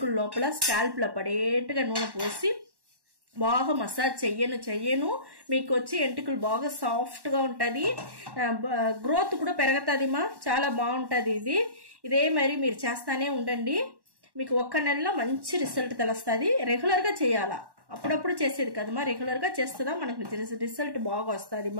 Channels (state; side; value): late; left; 1.1 ms